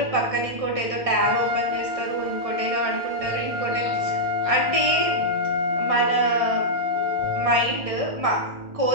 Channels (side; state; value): left; late; 1.6 ms